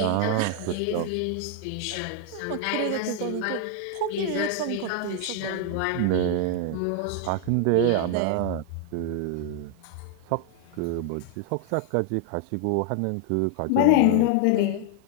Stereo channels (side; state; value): both; different; correlation 0.00